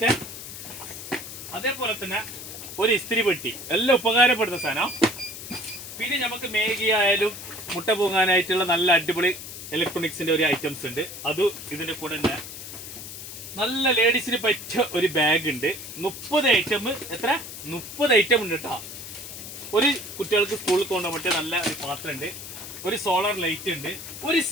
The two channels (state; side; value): noise; left; hiss, 11 dB below the sound